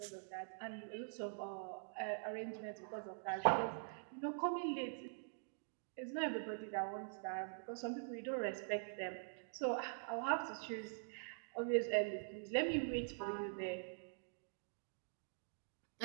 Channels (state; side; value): silent; left; digital silence